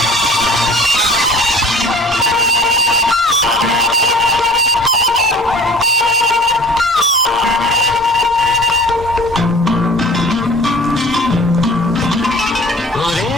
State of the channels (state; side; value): normal; both; correlation 0.46